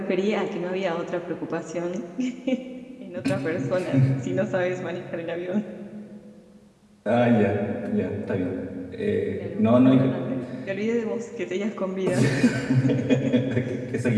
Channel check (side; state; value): both; identical; correlation 1.00